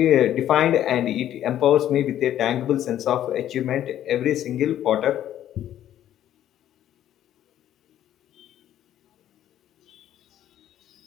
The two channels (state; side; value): quieter; right; 11.6 dB